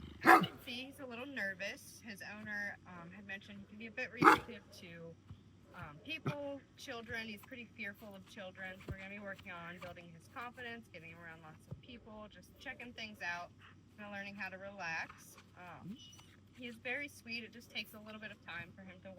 you can see, he's a little nervous. His owner had mentioned he can be a bit reactive to people, children. He's pretty fearful of children. So we're going to be working on building his confidence, getting him around lots of people, just checking things out, and learning how to relax. He is very sweet. It just takes a little bit of time for him to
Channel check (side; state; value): both; identical; correlation 1.00